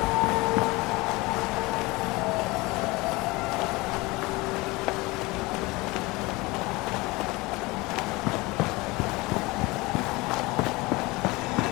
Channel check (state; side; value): quieter; right; 22.9 dB